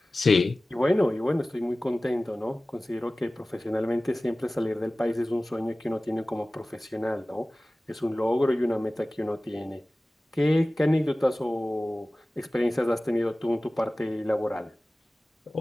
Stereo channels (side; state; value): both; normal; correlation 0.97